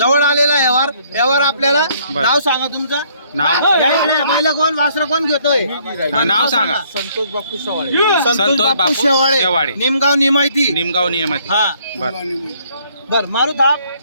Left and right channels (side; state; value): both; inverted; correlation -0.64